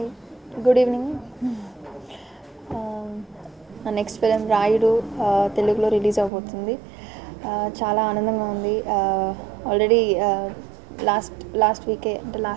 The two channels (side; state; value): left; drops out; at 6.3 s